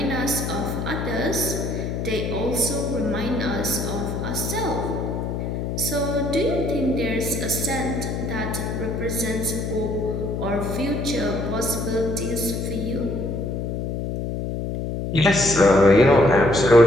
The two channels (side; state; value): left; noise; hum, 3 dB below the sound